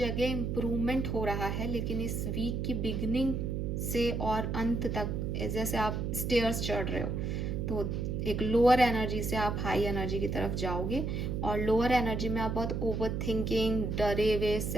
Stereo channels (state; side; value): noise; right; hum, 1 dB below the sound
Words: इम्प्रूवमेंट हो रहा है, लेकिन इस वीक की बिगनिंग से और अंत तक जैसे आप स्टेयर्स चढ़ रहे हो, तो एक लोअर एनर्जी से आप हाई एनर्जी की तरफ जाओगे, और लोअर एनर्जी में आप बहुत ओवर थिंकिंग, डरे हुए,